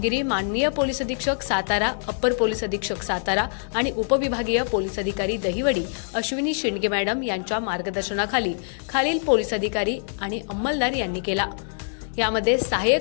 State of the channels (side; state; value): right; silent; digital silence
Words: माननीय पोलीस अधीक्षक सातारा, अप्पर पोलीस अधीक्षक सातारा आणि उपविभागीय पोलीस अधिकारी दहिवडी अश्विनी शिंदे मॅडम यांच्या मार्गदर्शनाखाली खालील पोलीस अधिकारी आणि अंमलदार यांनी केला। यामध्ये